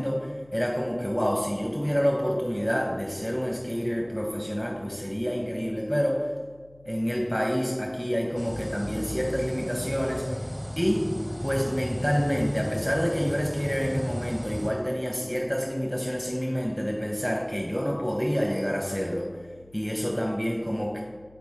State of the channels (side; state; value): left; noise; hum, 26 dB below the sound